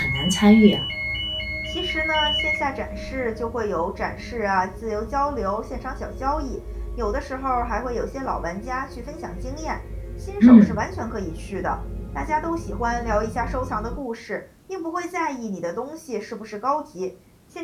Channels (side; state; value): both; identical; correlation 1.00